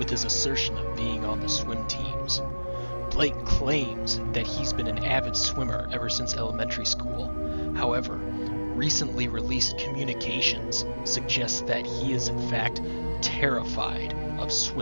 his assertion of being on the swim teams. Blake claims that he's been an avid swimmer ever since elementary school. However, recently released communications suggest that he is in fact terrified of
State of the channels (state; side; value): inverted; both; correlation -1.00